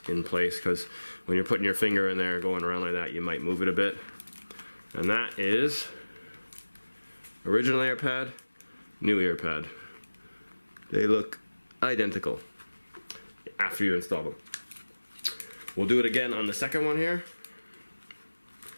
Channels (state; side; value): inverted; both; correlation -1.00